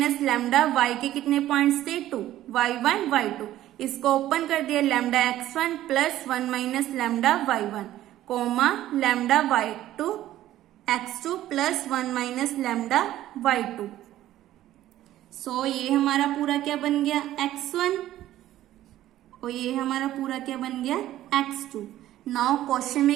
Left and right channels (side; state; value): left; quieter; 13.7 dB